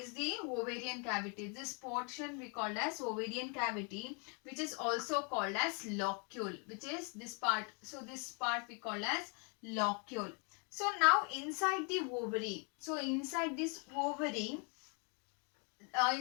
the ovarian cavity. This portion we call as ovarian cavity, which is also called as locule, which is this part. So this part we call as locule. So now inside the ovary, so inside this ovary,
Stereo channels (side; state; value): right; quieter; 36.3 dB